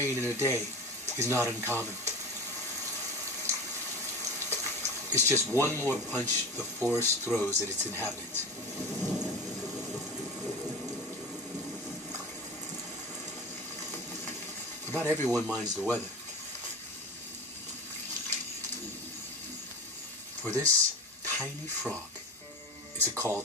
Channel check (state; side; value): normal; both; correlation 0.30